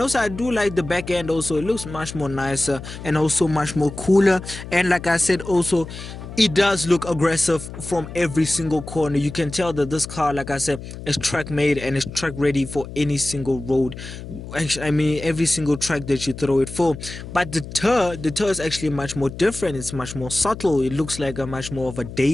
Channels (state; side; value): noise; left; hum, 11 dB below the sound